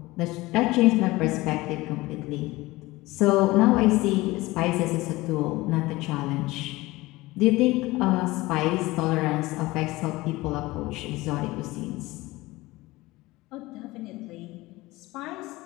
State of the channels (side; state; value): right; quieter; 20.0 dB